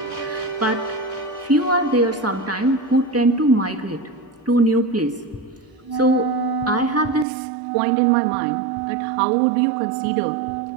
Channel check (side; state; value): left; drops out; at 7.2 s